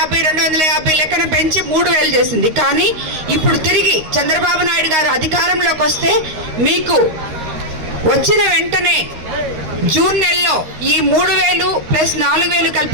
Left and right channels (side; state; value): left; late; 13 ms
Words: లెక్కన పెంచి 3000 చేసింది. కానీ ఇప్పుడు తిరిగి చంద్రబాబు నాయుడు గారు అధికారంలోకి వస్తే మీకు వచ్చిన వెంటనే జూన్ నెలలో ఈ 3000 ప్లస్ 4000